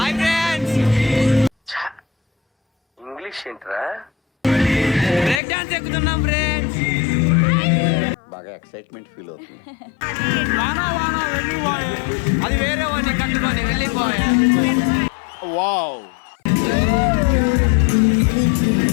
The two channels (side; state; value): right; drops out; at 5.4 s